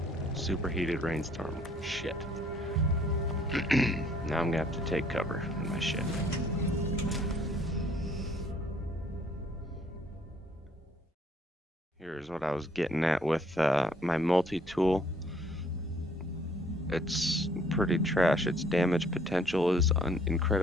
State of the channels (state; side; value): normal; both; correlation 0.61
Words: Superheated rainstorm. Shit. Now I'm gonna have to take cover in my ship. Here's what I was getting at with my multi-tool. It's pretty trash. Its damage potential is